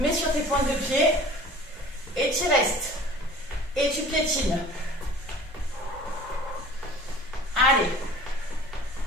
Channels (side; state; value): both; normal; correlation 0.45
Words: sur tes pointes de pied et tu restes. Et tu piétines. Allez.